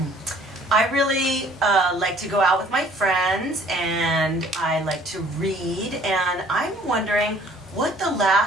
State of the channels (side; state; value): both; normal; correlation 0.56